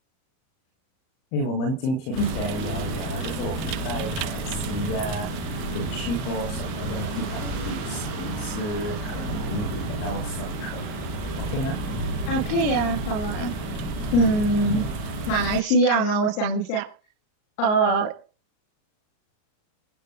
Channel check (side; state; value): right; late; 38 ms